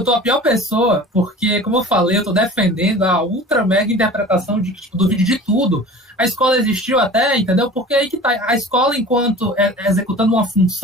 tô a pior pessoa, porque, como eu falei, eu tô defendendo a ultra mega interpretação de que, tipo, do vídeo de tudo. A escola existiu até, entendeu? Porque aí que tá. A escola, enquanto executando uma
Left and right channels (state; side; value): normal; both; correlation 0.40